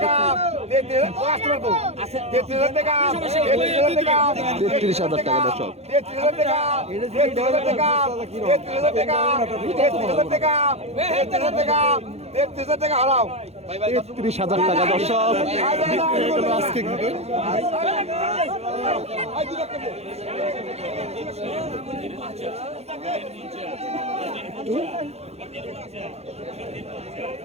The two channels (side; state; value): left; late; 0.31 ms